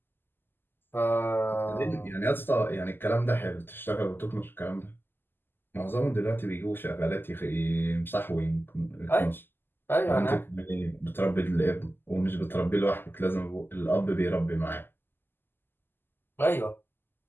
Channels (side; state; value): right; late; 0.097 ms